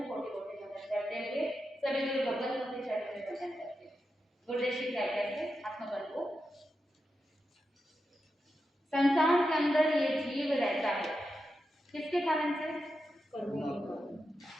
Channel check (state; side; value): normal; both; correlation 0.89